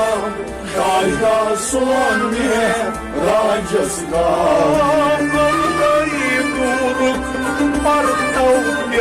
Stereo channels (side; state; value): both; identical; correlation 1.00